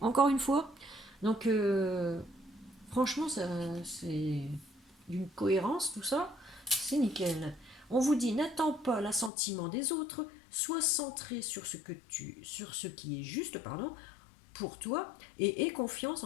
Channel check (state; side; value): drops out; right; at 9.3 s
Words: une fois. Donc, franchement, c'est d'une cohérence, tout ça. C'est nickel. On vous dit « N'attends pas l'assentiment des autres, sois centré sur ce qui est juste, pour toi, et aie confiance